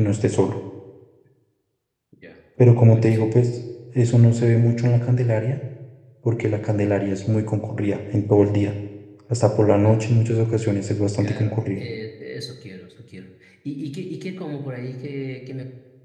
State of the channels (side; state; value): both; identical; correlation 1.00